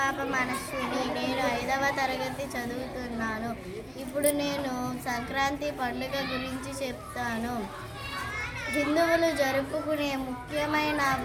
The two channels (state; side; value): identical; both; correlation 1.00